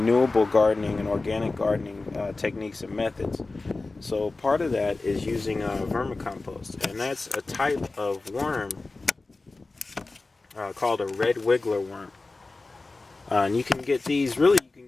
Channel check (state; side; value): quieter; right; 3.4 dB